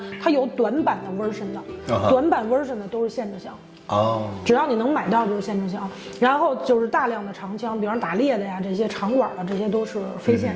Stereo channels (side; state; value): both; identical; correlation 1.00